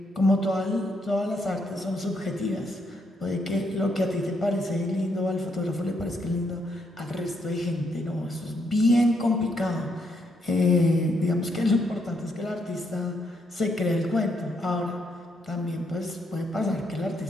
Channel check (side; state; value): both; normal; correlation 0.76